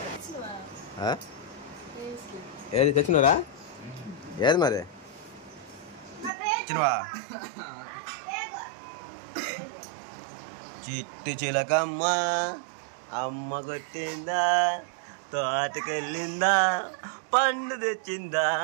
ఏది తెచ్చినరా? ఏది మరి ఇచ్చినవా? చిట్టి చిలకమ్మ అమ్మ కొట్టిందా, తోటకెళ్ళిందా, పండు తెచ్చిందా,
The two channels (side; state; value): left; drops out; at 6.3 s